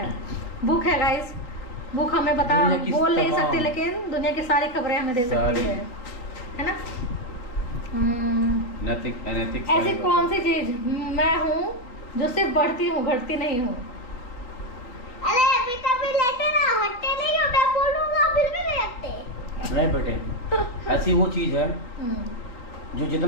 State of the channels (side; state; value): right; late; 3.9 ms